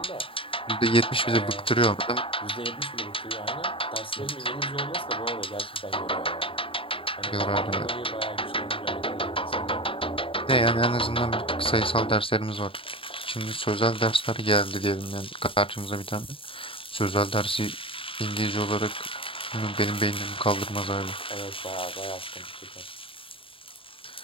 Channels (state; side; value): late; right; 0.26 ms